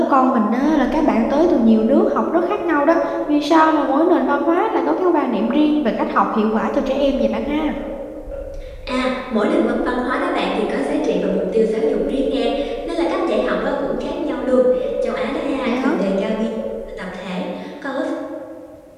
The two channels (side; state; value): both; identical; correlation 1.00